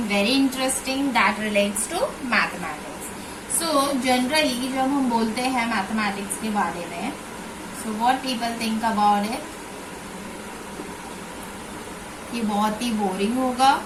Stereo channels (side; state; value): both; identical; correlation 1.00